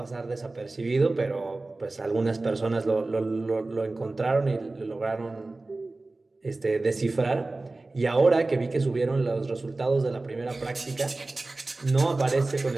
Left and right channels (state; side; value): quieter; left; 3.2 dB